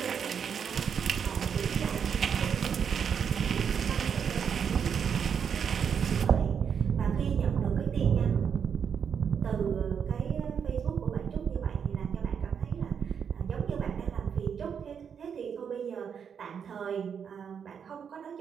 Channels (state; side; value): quieter; left; 7.3 dB